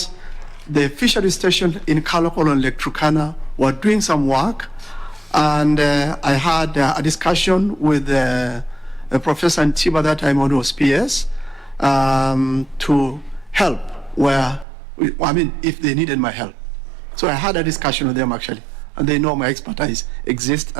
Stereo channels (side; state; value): left; drops out; at 14.7 s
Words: the fishery station in Kalokolo and Lake Turkana were doing some work, and I had a discussion with Professor Ntiba that time when he was PS to help if they needed my help. So I had a discussion with them actually, and they know my expertise exists,